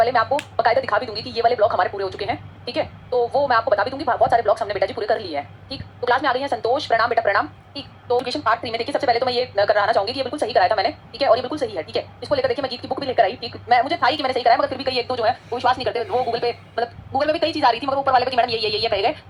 मैं आपको बकायदा दिखा भी दूंगी कि ये वाले ब्लॉक हमारे पूरे हो चुके हैं, ठीक है। तो वो मैं आपको बता भी दूंगी, बहुत सारे ब्लॉक्स हमने बेटा जी पूरे कर लिए हैं, ठीक। तो क्लास में आ गई हैं संतोष, प्रणाम बेटा प्रणाम, ठीक। तो एजुकेशन पार्ट 3 में देखिए, सबसे पहले तो मैं ये कराना चाहूंगी कि ये बिल्कुल सही कराया था मैंने, ठीक है, और ये बिल्कुल सही है, ठीक है। इसको लेकर देखिए मैं गीत की बुक भी लेकर आई, ठीक। मैं मुझे था ही कि मैंने सही कराया, मगर फिर भी कई एक दो जो है वो विश्वास नहीं करते, वो गूगल पे मतलब गूगल में भी कई चीज आ रही थी, मगर ऊपर वाले पे कि मैडम ये कहे गए,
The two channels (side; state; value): both; identical; correlation 1.00